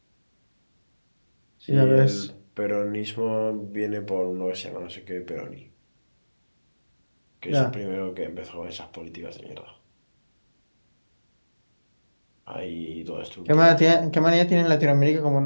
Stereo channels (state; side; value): inverted; both; correlation -1.00